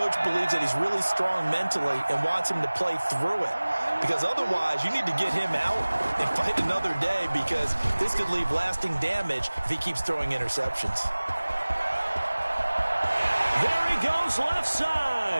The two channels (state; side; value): inverted; both; correlation -1.00